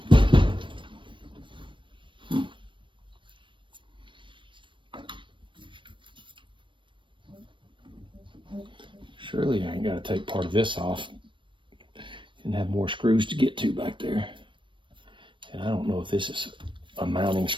Surely I ain't got to take part of this off and have more screws to get to back there. And I don't know if this is a mounting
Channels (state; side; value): late; left; 0.24 ms